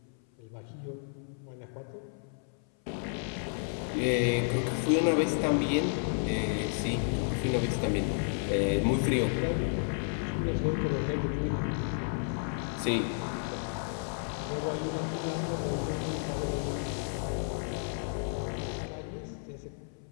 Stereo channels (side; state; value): right; silent; 56 dB below the other